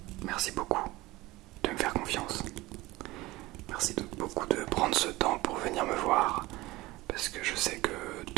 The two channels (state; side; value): quieter; left; 19.7 dB